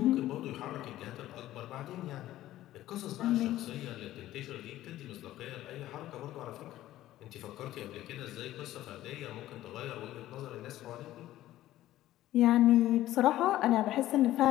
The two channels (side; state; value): right; quieter; 14.4 dB